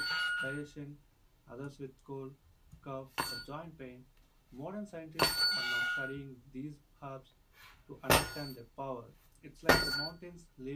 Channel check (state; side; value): identical; both; correlation 1.00